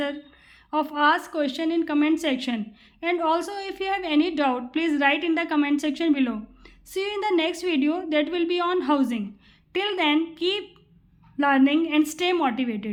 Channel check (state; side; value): identical; both; correlation 1.00